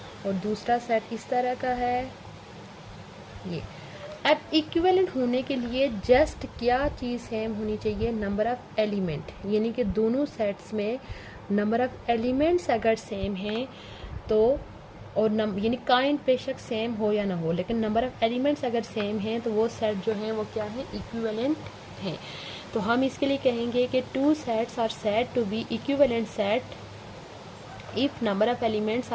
और दूसरा सेट इस तरह का है, ये अब इक्विवेलेंट होने के लिए जस्ट क्या चीज़ सेम होनी चाहिए, नंबर ऑफ़ एलिमेंट, यानी कि दोनों सेट्स में नंबर ऑफ़ एलिमेंट्स अगर सेम हैं तो, और यानी काइंड बेशक सेम हो या ना हो, लेकिन नंबर ऑफ़ एलिमेंट्स अगर सेम हैं तो वो सेट जो हैं वो क्या है, इक्विवेलेंट हैं। तो हम इसके लिए कहेंगे कि two sets are said to be equivalent set if number of elements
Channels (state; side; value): identical; both; correlation 1.00